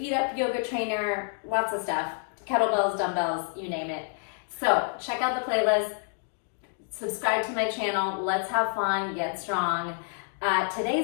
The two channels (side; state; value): right; silent; 59 dB below the other